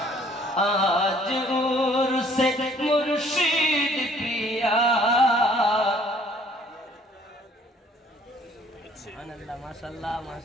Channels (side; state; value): both; normal; correlation 0.58